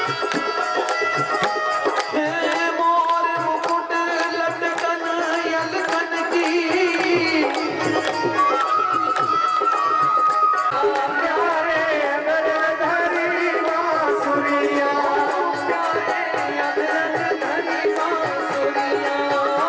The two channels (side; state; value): both; identical; correlation 1.00